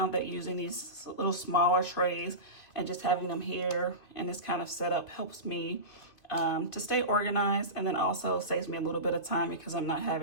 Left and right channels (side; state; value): right; late; 2.5 ms